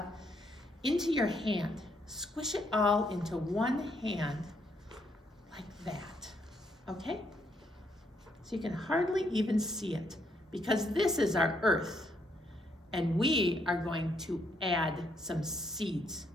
into your hand. Squish it all into one hand like that, okay? So you can hardly even see it because this is our earth and we are going to add some seeds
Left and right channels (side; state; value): both; normal; correlation 0.73